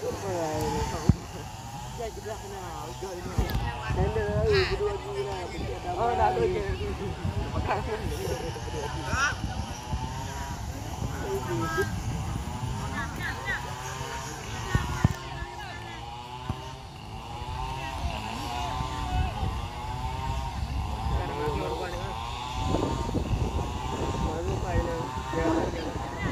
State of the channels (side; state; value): both; identical; correlation 1.00